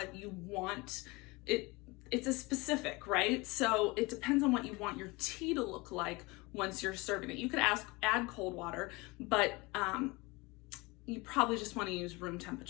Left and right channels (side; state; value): right; quieter; 24.5 dB